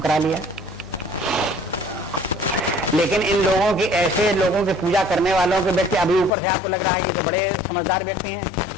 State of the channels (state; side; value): drops out; right; at 6.3 s